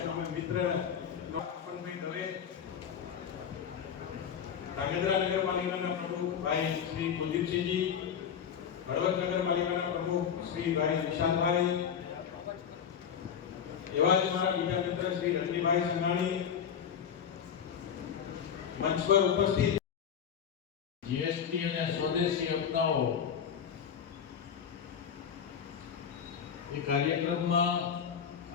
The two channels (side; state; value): right; quieter; 7.9 dB